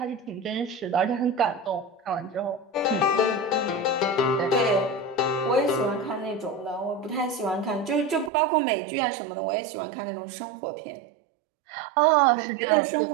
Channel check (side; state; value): left; drops out; at 8.3 s